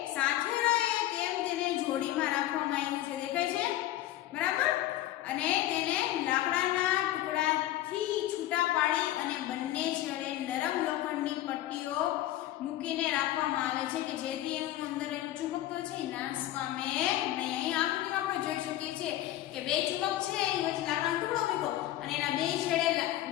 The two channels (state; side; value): quieter; right; 14.3 dB